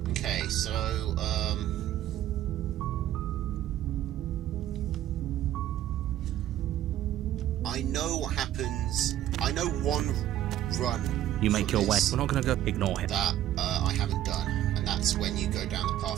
Okay, so, I know what happens. I know one run. You make your way. We're not going to go ignore him. That I haven't done, and that's when you go down the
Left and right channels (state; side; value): quieter; left; 12.4 dB